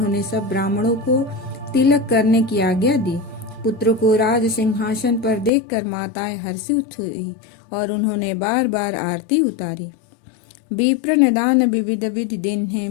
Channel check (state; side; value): drops out; right; at 5.5 s